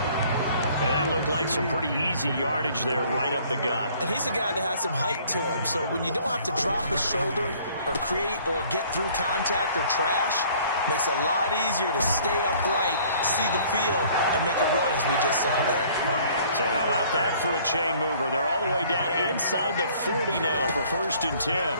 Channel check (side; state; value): both; inverted; correlation -0.56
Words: And that looked like some pretty easy yardage there right up the gut. And he's a guy that has some height to him. So when you don't have to drop a shoulder or create or get through contact or trash, makes it a lot easier to stay upright, see the field, and make a run as we just saw there. So how about that for a chain mover? They're all the way down inside the 40 now for 1st and 10.